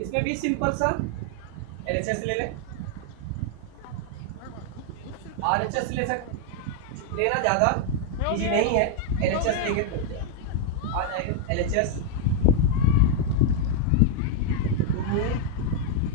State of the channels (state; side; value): different; both; correlation 0.00